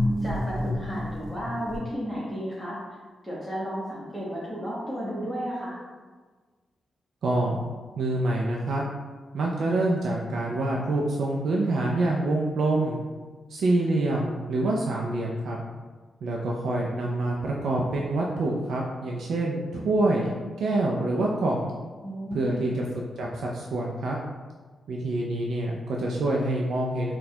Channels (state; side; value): normal; both; correlation 0.81